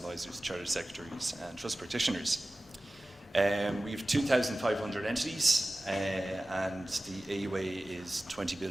chartered secretaries, and trust practitioners. We have 2,500 entities, and the AUA is 20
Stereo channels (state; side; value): normal; both; correlation 0.96